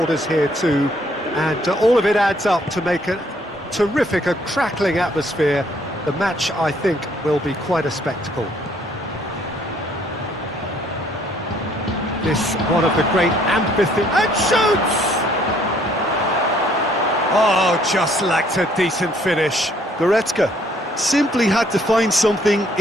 here too, and all of it adds up to make a terrific, a crackling atmosphere. The match, I think, will be quite a spectacle. This one of the great amphitheatres, and shoots! Oh, just lacked a decent finish. Goretzka simply had to find something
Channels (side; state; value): both; normal; correlation 0.64